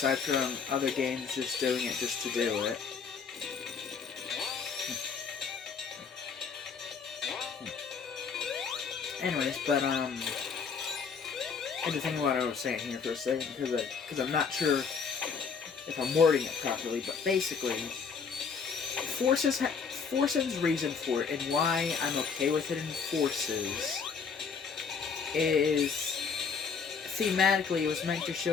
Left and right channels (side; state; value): right; quieter; 5.8 dB